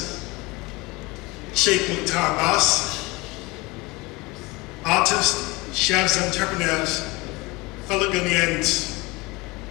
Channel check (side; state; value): right; quieter; 23.7 dB